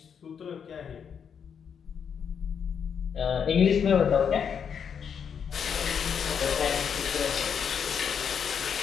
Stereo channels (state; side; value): quieter; right; 7.3 dB